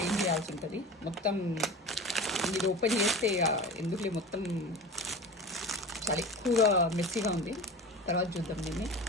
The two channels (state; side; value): normal; both; correlation 0.33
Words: చేయాల్సి ఉంటుంది. మొత్తం ఇది ఓపెన్ చేస్తే ఎందుకులే మొత్తం చాలా ఎక్కువగా మెస్సీగా ఉంది. తర్వాత చూద్దాం దీన్ని,